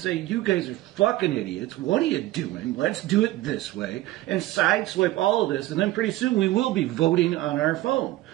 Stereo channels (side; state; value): left; quieter; 16.5 dB